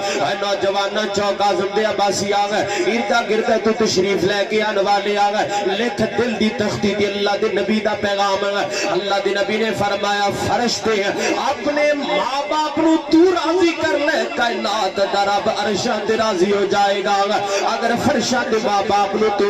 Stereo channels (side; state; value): both; identical; correlation 1.00